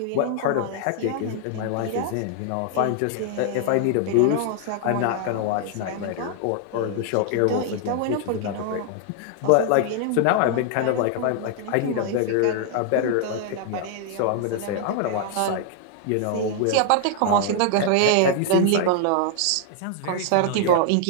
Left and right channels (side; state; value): both; different; correlation 0.00